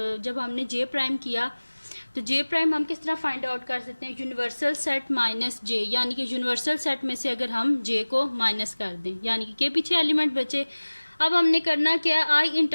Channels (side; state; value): both; inverted; correlation -1.00